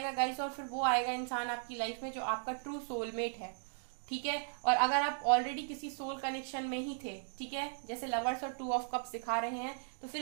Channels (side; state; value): left; silent; digital silence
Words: गाइस, और फिर वो आएगा इंसान आपकी लाइफ में जो आपका ट्रू सोलमेट है। ठीक है, और अगर आप ऑलरेडी किसी सोल कनेक्शन में ही थे, ठीक है, जैसे लवर्स और 2 ऑफ कप्स दिखा रहे हैं, तो फिर